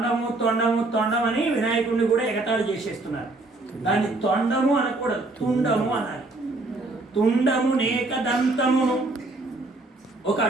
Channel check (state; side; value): quieter; left; 3.0 dB